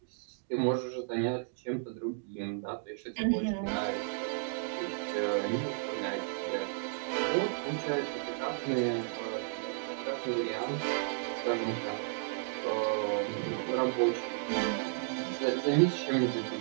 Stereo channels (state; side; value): silent; left; 56 dB below the other